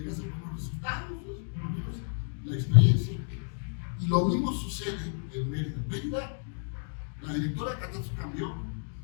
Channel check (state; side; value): silent; right; 57 dB below the other